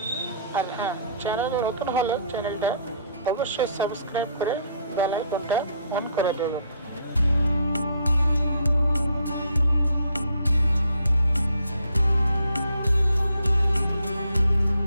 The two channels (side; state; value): both; inverted; correlation -0.65